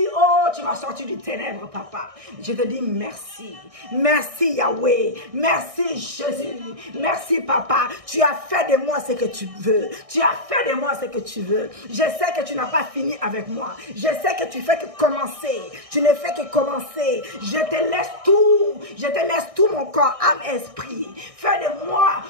oh, tu m'as sorti du ténèbre, papa. Je te dis merci. Merci, Yahweh. Merci, Jésus. Merci, papa. Tu as fait de moi ce que tu veux. Tu as fait de moi ce que tu veux. Je sais que tu n'as pas fini avec moi. Je sais que tu fais que commencer. Tu ne fais que commencer. Je te laisse tout. Je te laisse tout mon corps, âme, esprit. Fais de moi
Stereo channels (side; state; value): left; late; 1.6 ms